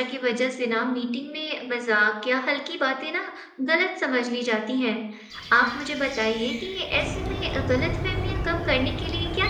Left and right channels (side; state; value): both; identical; correlation 1.00